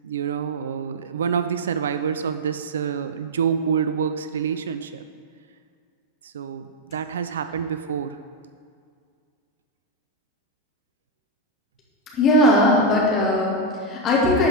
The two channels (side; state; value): both; normal; correlation 0.00